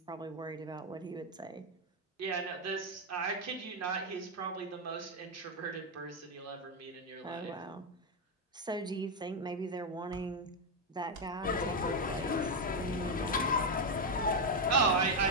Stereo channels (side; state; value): both; normal; correlation 0.04